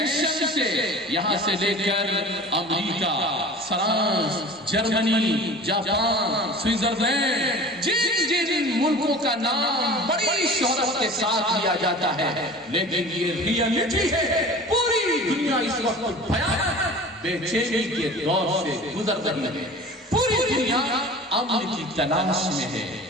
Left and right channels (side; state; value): both; normal; correlation 0.40